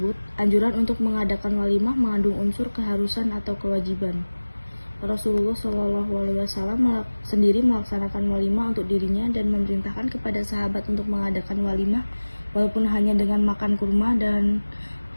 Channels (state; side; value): inverted; both; correlation -1.00